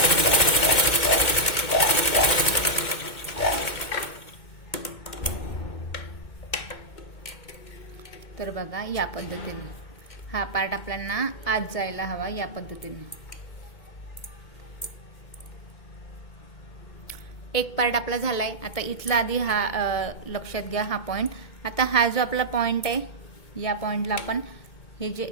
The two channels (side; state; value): right; late; 2.2 ms